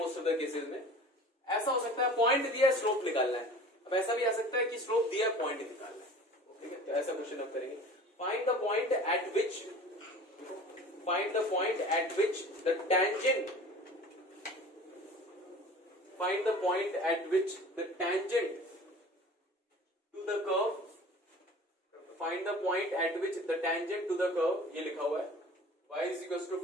ऑफ द केसेस में। ऐसा हो सकता है पॉइंट दिया है, स्लोप निकालना है। अब ऐसा भी आ सकता है कि स्लोप दिया है, पॉइंट निकालना है, ठीक है। तो ऐसा क्वेश्चन हम करेंगे। Find the point eight which the tangent find the point at which the tangent to the curve ये लिखा हुआ है y is equals to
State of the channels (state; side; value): normal; both; correlation 0.42